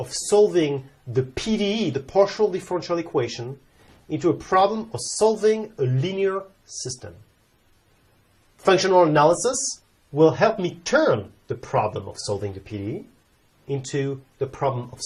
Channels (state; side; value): identical; both; correlation 1.00